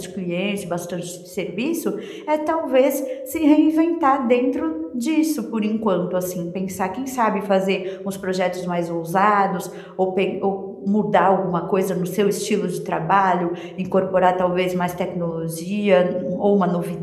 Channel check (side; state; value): both; identical; correlation 1.00